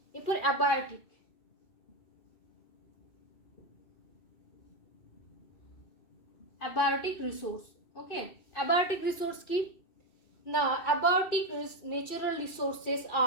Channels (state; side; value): late; right; 2.7 ms